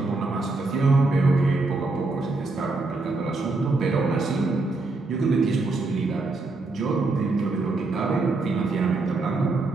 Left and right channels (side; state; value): left; quieter; 3.4 dB